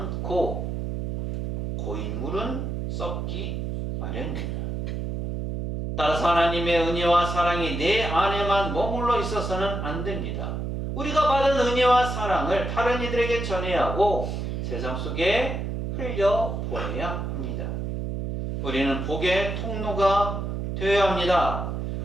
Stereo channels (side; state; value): right; noise; hum, 3 dB below the sound